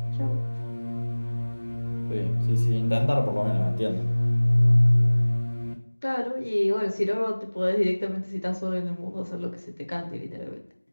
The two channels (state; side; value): inverted; both; correlation -1.00